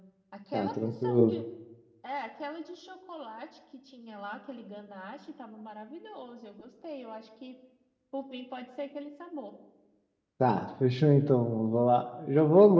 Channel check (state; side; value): identical; both; correlation 1.00